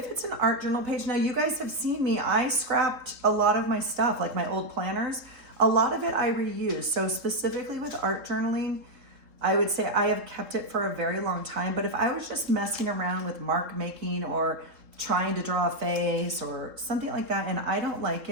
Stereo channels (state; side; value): late; left; 3.7 ms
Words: it's an art journal page, now you guys have seen me, I scrapped a lot of my stuff, like my old planners. A lot of it I reuse. So specifically with art journaling, I would say I have kept it for a very long time. But if I was just messing around with mark making or trying to draw a face or something like that and I don't like